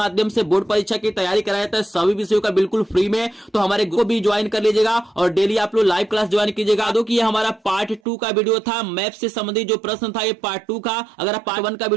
से बोर्ड परीक्षा की तैयारी कराया जाता है सभी विषयों का बिल्कुल फ्री में। तो हमारे को भी ज्वाइन कर लीजिएगा और डेली आप लोग लाइव क्लास ज्वाइन कीजिएगा। दो कि ये हमारा पार्ट 2 का वीडियो था, मैप से संबंधित जो प्रश्न था ये पार्ट 2 का। अगर पार्ट 1 का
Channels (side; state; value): left; drops out; at 8.0 s